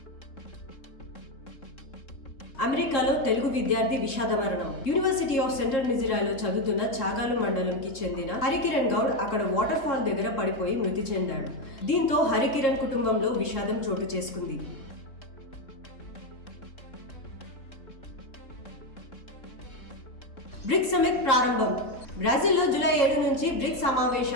అమెరికాలో తెలుగు విద్యార్థి విషాద మరణం. యూనివర్సిటీ ఆఫ్ సెంట్రల్ మిజోరాలో చదువుతున్న చాగాలు మండలంకి చెందిన హరికిరణ్ గౌడ్ అక్కడ వాటర్ ఫాల్ దగ్గర పడిపోయి మృతి చెందాడు. దీంతో హరికిరణ్ కుటుంబంలో విషాదం చోటు చేసుకుంది. బ్రిక్స్ సమిట్ ప్రారంభం. బ్రెజిల్లో జూలై 7 నుంచి బ్రిక్స్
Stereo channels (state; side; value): late; right; 3.7 ms